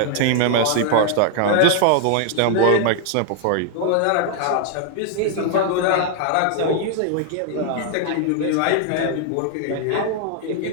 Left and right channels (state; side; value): different; both; correlation 0.00